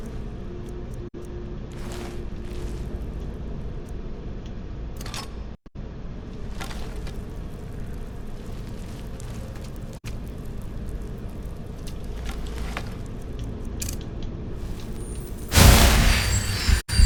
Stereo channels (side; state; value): both; identical; correlation 1.00